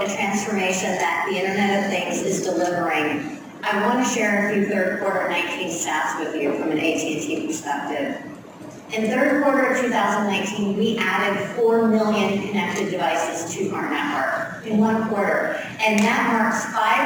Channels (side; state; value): both; identical; correlation 1.00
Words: transformation that the Internet of Things is delivering, I want to share a few third quarter 19 stats with you from an AT&T perspective. In third quarter of 2019, we added 4 million connected devices to our network in one quarter. And that marks